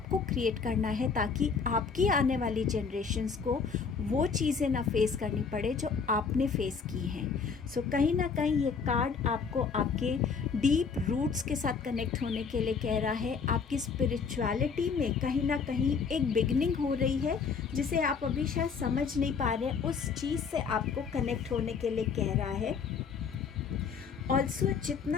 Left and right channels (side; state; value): right; quieter; 5.6 dB